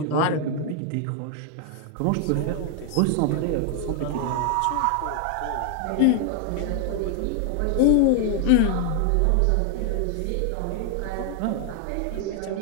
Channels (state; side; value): different; both; correlation 0.00